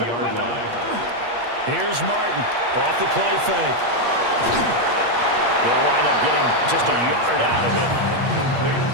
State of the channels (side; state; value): left; late; 8.5 ms